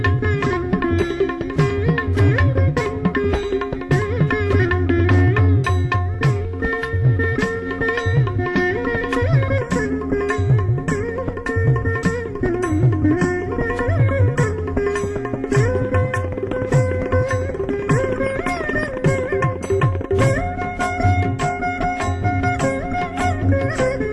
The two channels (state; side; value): identical; both; correlation 1.00